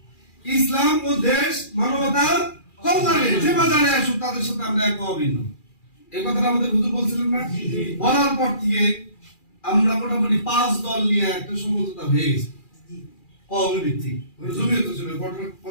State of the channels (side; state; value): right; late; 2.4 ms